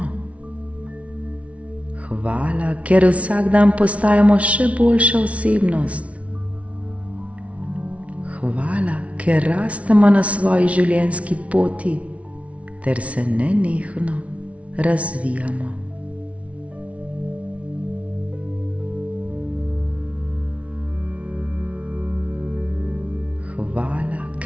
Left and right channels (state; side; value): late; left; 0.064 ms